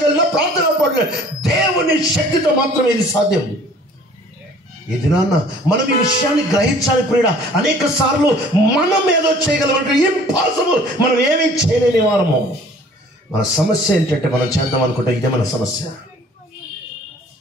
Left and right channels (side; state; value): both; normal; correlation 0.52